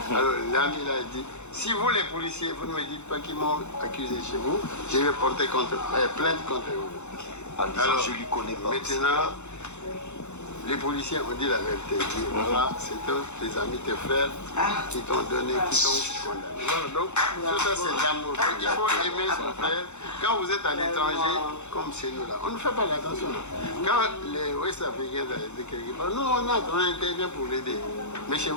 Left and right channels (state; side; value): late; right; 0.83 ms